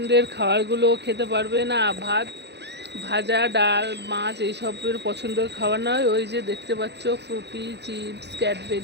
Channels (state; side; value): late; left; 0.50 ms